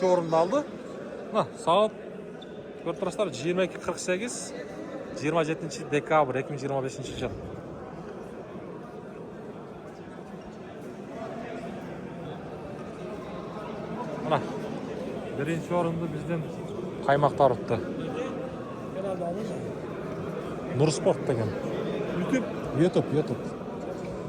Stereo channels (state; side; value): identical; both; correlation 1.00